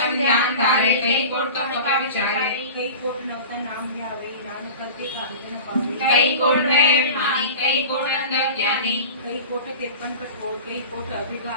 ध्यान धारे कई कोट कम कपा विचारे कई कोट नवता नाम ध्यावे नानक करते कामित न पावे कई कोट है अभिमानी कई कोट अंध ज्ञानी कई कोट कृपन कठोर कई कोट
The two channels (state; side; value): inverted; both; correlation -0.35